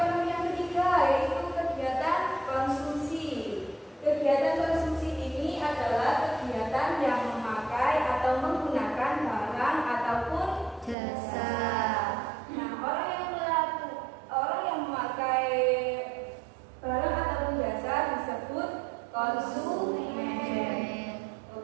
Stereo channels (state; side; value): drops out; left; at 11.0 s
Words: yang ketiga yaitu kegiatan konsumsi. Kegiatan konsumsi ini adalah kegiatan yang memakai atau menggunakan barang ataupun jasa, Nah, orang yang memakai barang ataupun jasa disebut konsumen.